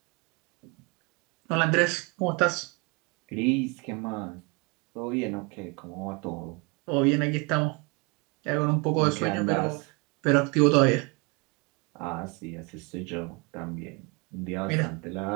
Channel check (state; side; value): quieter; left; 29.3 dB